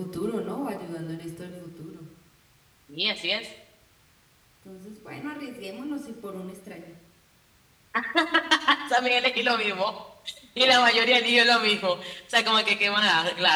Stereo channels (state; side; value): identical; both; correlation 1.00